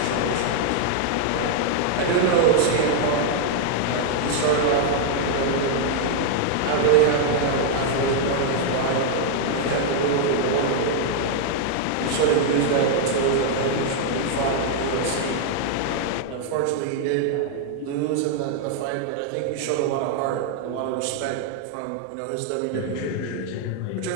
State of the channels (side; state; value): both; different; correlation 0.00